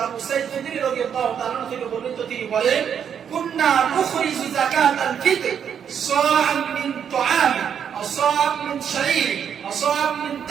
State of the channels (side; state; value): left; quieter; 8.1 dB